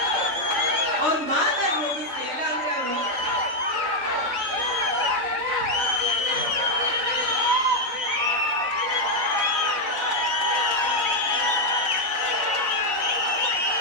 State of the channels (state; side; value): late; left; 4.0 ms